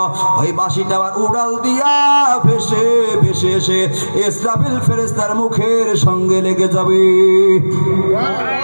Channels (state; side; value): inverted; both; correlation -1.00